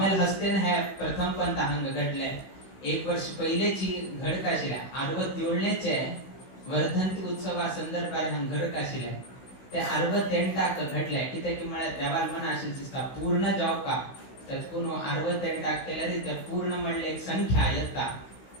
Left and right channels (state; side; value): late; right; 16 ms